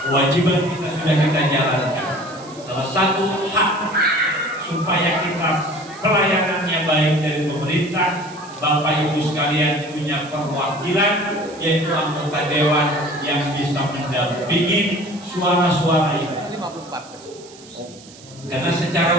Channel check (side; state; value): right; noise; hiss, 21 dB below the sound